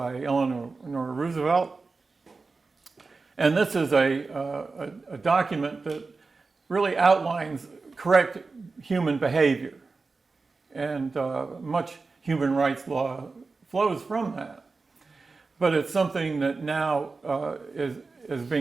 Eleanor Roosevelt. And this is a document that really outlines correct human behavior. And much human rights law flows from that. But it's something that now is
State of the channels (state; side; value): quieter; left; 4.1 dB